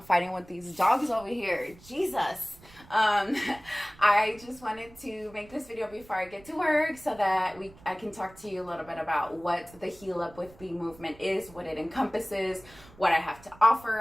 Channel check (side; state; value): right; noise; rumble, 23 dB below the sound